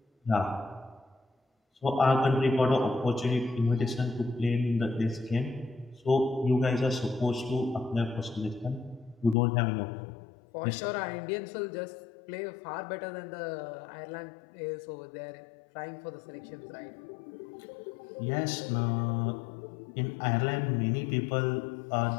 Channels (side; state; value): right; drops out; at 9.3 s